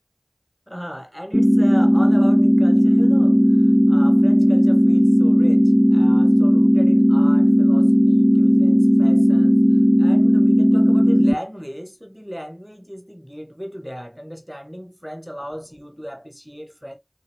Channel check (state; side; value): identical; both; correlation 1.00